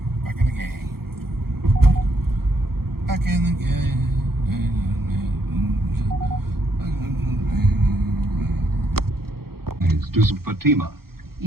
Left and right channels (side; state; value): left; late; 0.94 ms